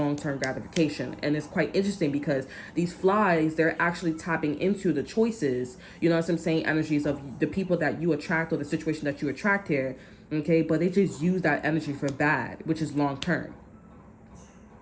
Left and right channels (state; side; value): identical; both; correlation 1.00